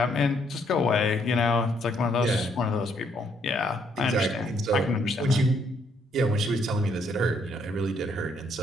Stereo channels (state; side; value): normal; both; correlation 0.70